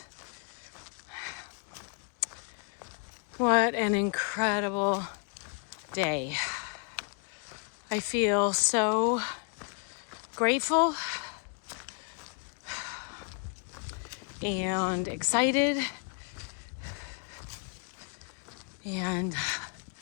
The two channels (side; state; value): right; quieter; 38.0 dB